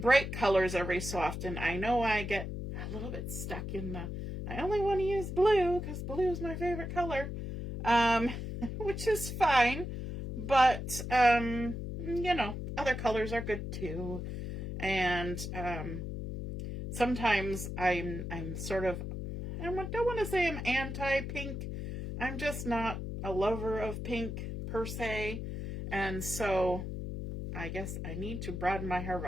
colors every so often. I know I get a little bit stuck in the, I only want to use blue because blue is my favorite color, which is fine. But, you know, other colors are good too. And, sometimes I'm sort of, I don't want to say I'm anti-pink. I'm just not a lover of pink per se. And so I guess I need to broaden my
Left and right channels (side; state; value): left; noise; hum, 5 dB below the sound